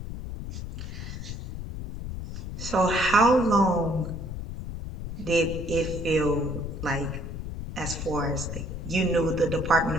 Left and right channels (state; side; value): noise; left; rumble, 7 dB below the sound